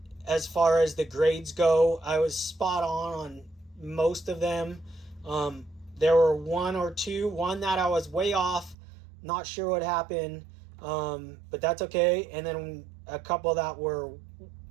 as far as the grades go. I was spot on most of them. There were one or two. One that I was way off. Not sure what happened. But that's okay. And then a couple that were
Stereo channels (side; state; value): left; drops out; at 8.8 s